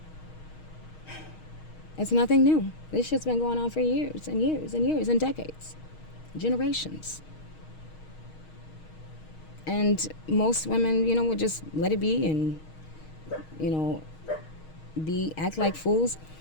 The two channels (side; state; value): right; late; 6.4 ms